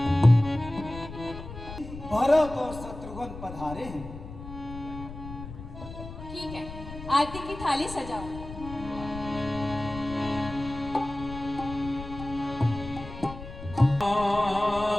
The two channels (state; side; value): noise; left; rumble, 12 dB below the sound